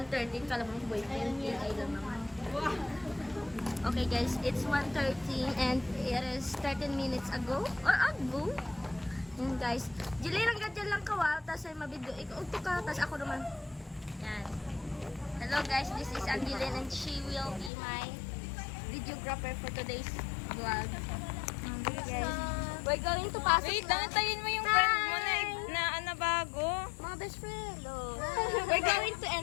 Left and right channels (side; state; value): right; drops out; at 17.7 s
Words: Kala mo boyfriend. I don't know. Okay, guys. It's 1:30 and it is 13 minutes ago. Or ago. Yan, guys. Jilin lang gadyan lang kawa. Tapos ay mabidyo. Ikaw ka. Tapos ako naman. Yan. Hello, guys. This is Angeline and she will be my videographer for today's vlog. Guys, we're going to pasok Wait, na. dantayin mo yung friend mo na bago. Mga best friend, We're going to